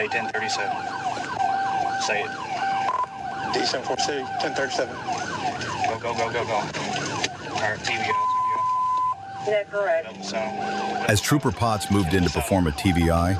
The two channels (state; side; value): identical; both; correlation 1.00